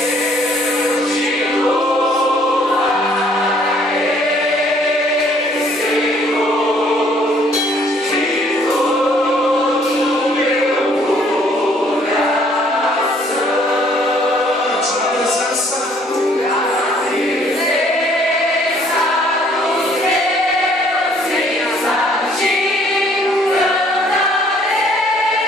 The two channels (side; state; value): both; normal; correlation 0.62